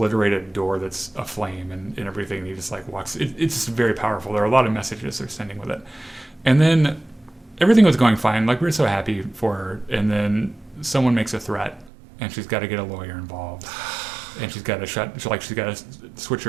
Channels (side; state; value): left; drops out; at 11.9 s